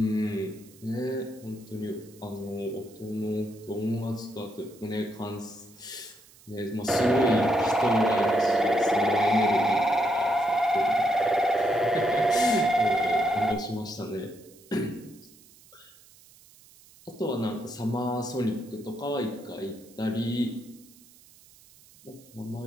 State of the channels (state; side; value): noise; right; hiss, 25 dB below the sound